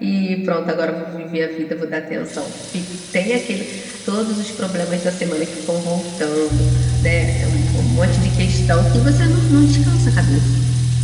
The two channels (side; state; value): both; identical; correlation 1.00